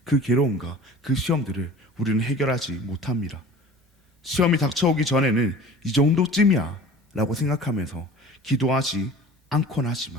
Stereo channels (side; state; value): both; normal; correlation 0.42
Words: 그 괴로움과 그 시험들을 우리는 해결하지 못합니다. 시험이 닥쳐오기 전에는 이 정도쯤이야 라고 생각하면서 기도하지 않곤